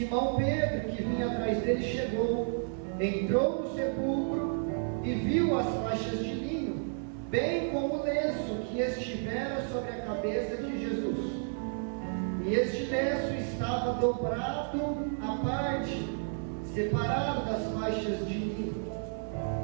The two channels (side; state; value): left; silent; 57 dB below the other